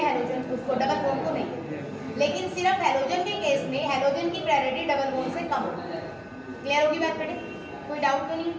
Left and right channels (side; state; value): both; identical; correlation 1.00